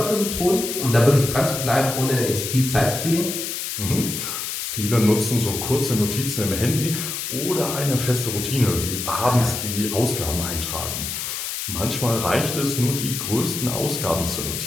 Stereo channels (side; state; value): left; noise; hiss, 4 dB below the sound